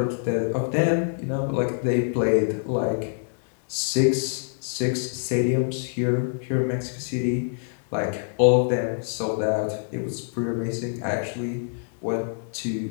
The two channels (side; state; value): right; silent; digital silence